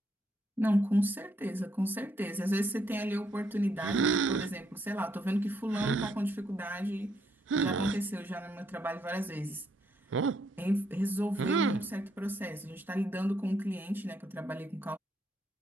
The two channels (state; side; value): normal; both; correlation 0.74